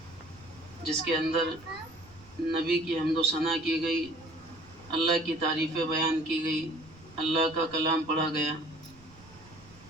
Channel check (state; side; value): noise; right; rumble, 23 dB below the sound